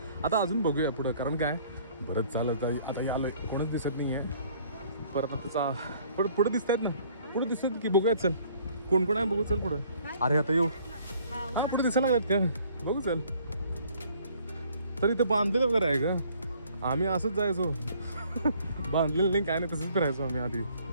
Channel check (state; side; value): inverted; both; correlation -0.58